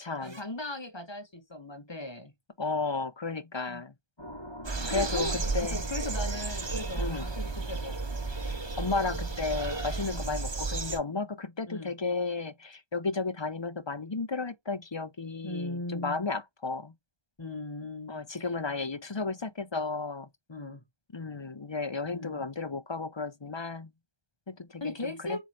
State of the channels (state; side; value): late; right; 1.2 ms